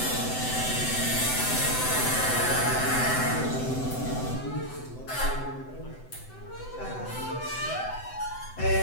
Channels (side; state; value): right; late; 7.9 ms